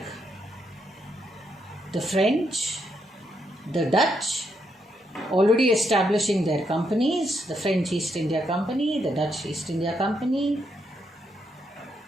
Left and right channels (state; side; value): normal; both; correlation 0.78